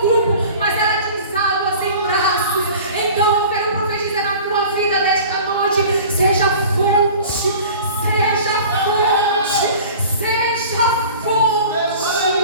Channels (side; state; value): both; inverted; correlation -0.42